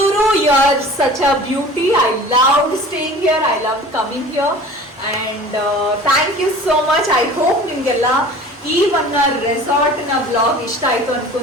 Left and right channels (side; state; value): both; normal; correlation 0.43